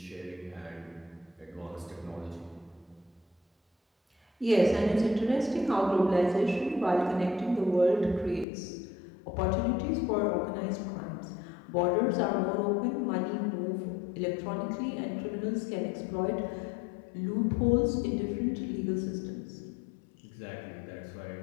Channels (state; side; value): drops out; right; at 8.5 s